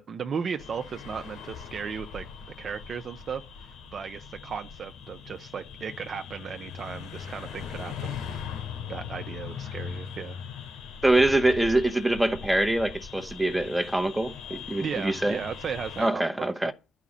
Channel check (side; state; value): both; normal; correlation 0.91